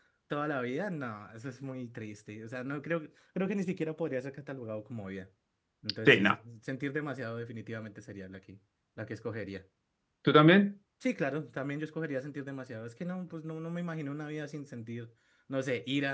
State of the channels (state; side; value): identical; both; correlation 1.00